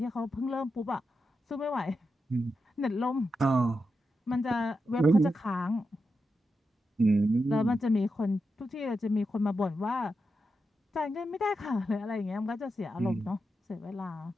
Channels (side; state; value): both; normal; correlation 0.88